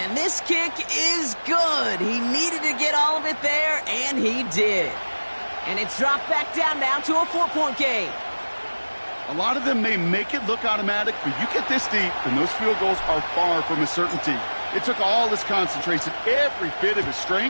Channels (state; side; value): inverted; both; correlation -1.00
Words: this kick is good. He needed to get all of it there, and he did. And it's dropped back down now to a 4-point game. A lot of them may make it look automatic, but you get this deep, and those field goals are far from a certainty. It took all his concentration, every bit of his